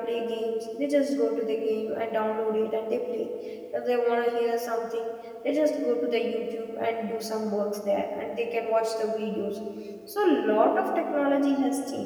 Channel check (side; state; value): both; identical; correlation 1.00